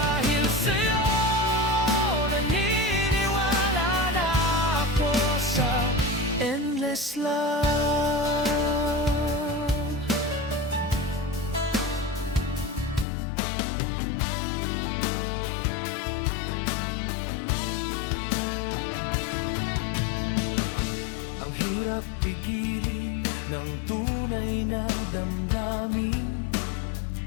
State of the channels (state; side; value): drops out; right; at 13.1 s